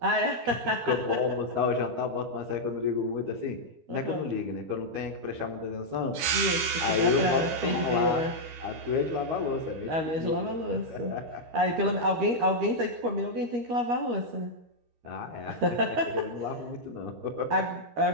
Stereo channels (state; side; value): late; left; 13 ms